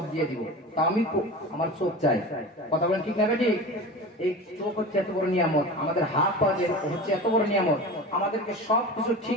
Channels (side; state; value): both; normal; correlation 0.32